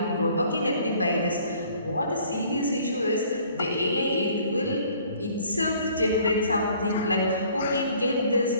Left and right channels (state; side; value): inverted; both; correlation -0.57